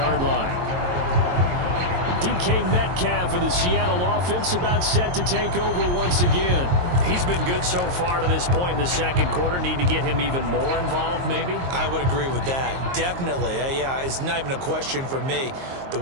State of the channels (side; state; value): left; late; 22 ms